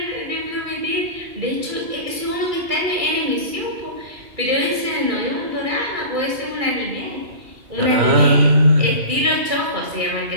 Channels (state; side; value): late; left; 2.3 ms